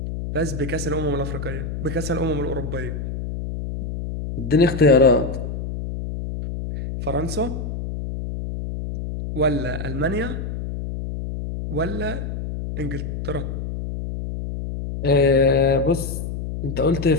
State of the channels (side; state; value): left; noise; hum, 5 dB below the sound